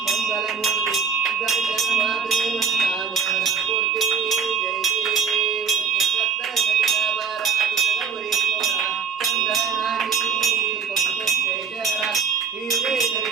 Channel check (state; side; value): quieter; left; 6.4 dB